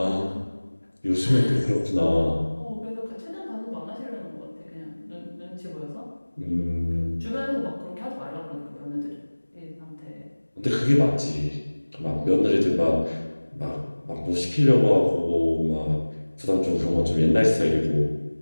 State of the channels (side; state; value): both; inverted; correlation -1.00